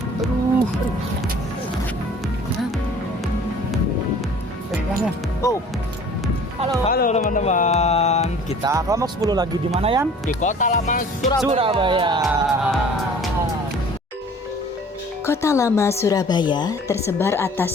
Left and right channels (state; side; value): normal; both; correlation 0.49